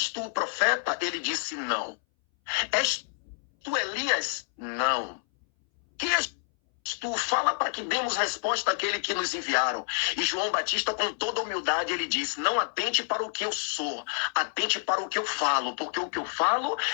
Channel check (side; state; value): right; silent; 59 dB below the other